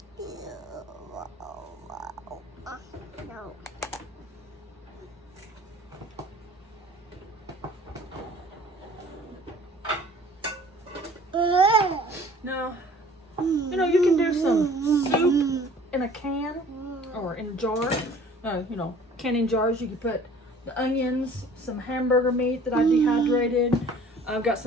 Now, you know, you can do some soup in a can or in a jar. You know, canning jars. You can put the onions, some hamburger meat that I dehydrated. I've got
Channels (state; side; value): normal; both; correlation 0.50